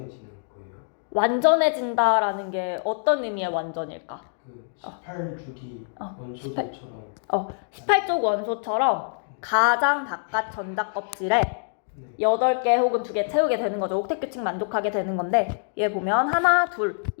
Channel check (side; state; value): right; silent; digital silence